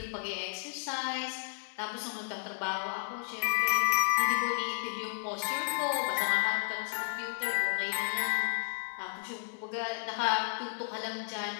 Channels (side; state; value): right; silent; digital silence